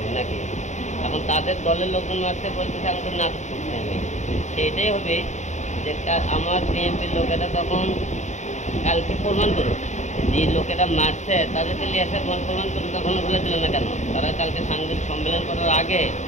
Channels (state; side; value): late; right; 0.34 ms